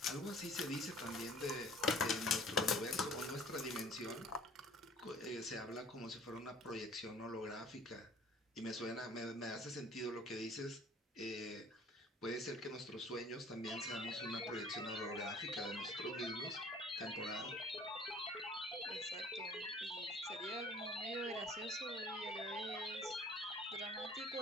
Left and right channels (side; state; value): both; normal; correlation 0.52